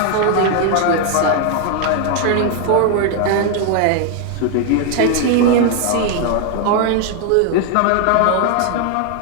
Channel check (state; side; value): different; both; correlation 0.00